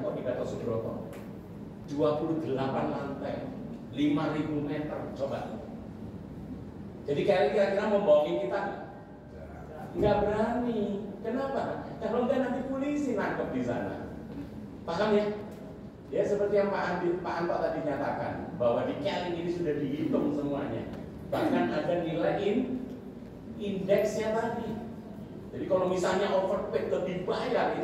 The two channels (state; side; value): identical; both; correlation 1.00